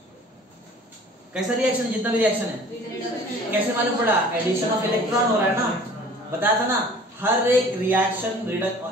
कैसा रिएक्शन है, जितना भी रिएक्शन है, कैसे मालूम पड़ा, एडिशन ऑफ इलेक्ट्रॉन हो रहा है ना, बताया था ना, हर एक रिएक्शन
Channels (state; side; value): normal; both; correlation 0.48